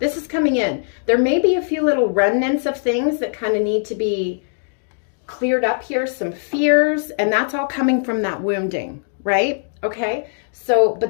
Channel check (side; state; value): right; silent; digital silence